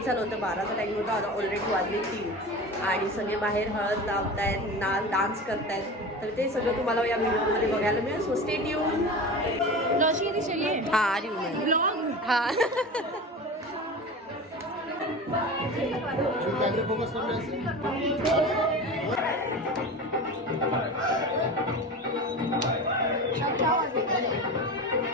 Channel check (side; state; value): both; normal; correlation 0.31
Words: झालं होतं, 12चा टाईम होता, ऑलरेडी वाजले 3 आणि सगळे बाहेर हळद लावतायत, डान्स करतायत. तर ते सगळं तुम्हाला या व्हिडिओमध्ये बघायला मिळेल. So stay tune. हां ब्लॉग हां फोकस